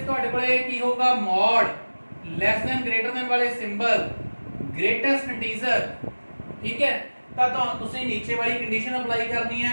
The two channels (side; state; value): both; inverted; correlation -1.00